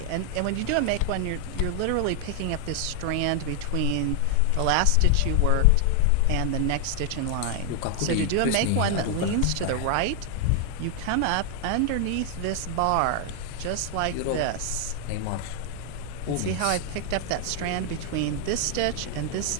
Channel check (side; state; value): both; different; correlation 0.00